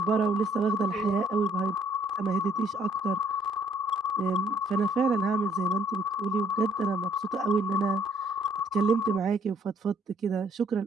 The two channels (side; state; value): both; normal; correlation 0.63